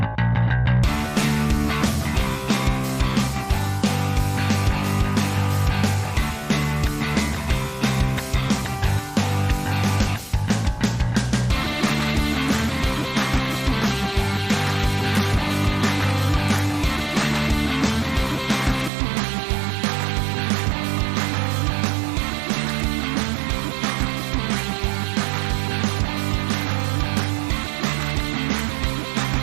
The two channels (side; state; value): left; drops out; at 18.9 s